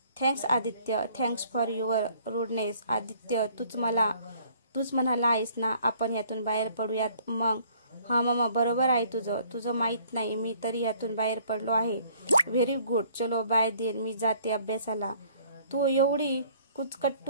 Thanks Aditya, thanks for your rudeness. Aditya, तूच म्हणाला आहेस ना आपण यातून बाहेर पडूयात. मग हा मामा, बरोबर आहे तुझं माहीत नाही, मी तरी यातून बाहेर पडलो आहे. Very good. चलो बाय देन, मी जाते अभ्यासाला. तू एवढी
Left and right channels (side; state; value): both; inverted; correlation -0.58